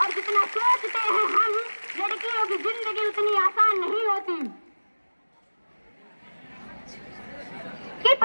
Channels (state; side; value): inverted; both; correlation -1.00